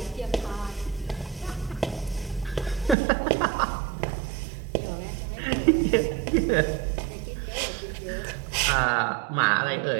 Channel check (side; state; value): left; drops out; at 3.0 s